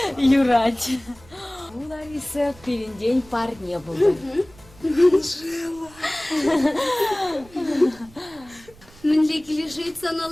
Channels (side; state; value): right; noise; rumble, 24 dB below the sound